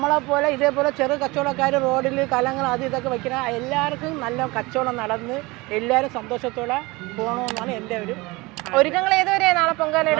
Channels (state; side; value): quieter; left; 23.2 dB